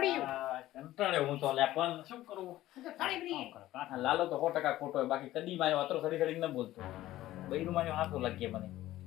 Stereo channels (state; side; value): quieter; right; 15.1 dB